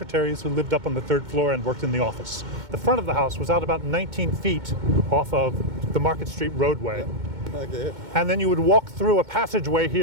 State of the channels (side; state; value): left; late; 2.2 ms